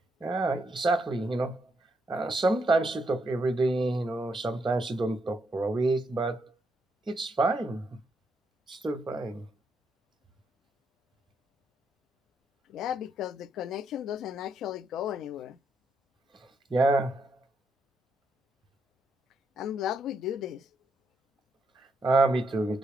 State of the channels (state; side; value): normal; both; correlation 0.79